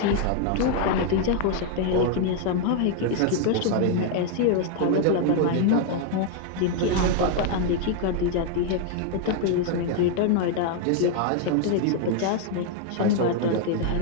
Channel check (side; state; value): both; different; correlation 0.00